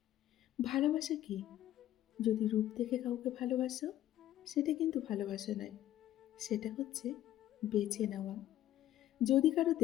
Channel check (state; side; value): quieter; right; 13.0 dB